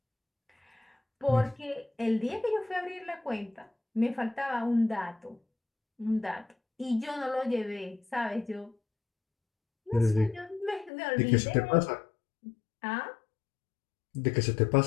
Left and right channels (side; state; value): right; drops out; at 10.9 s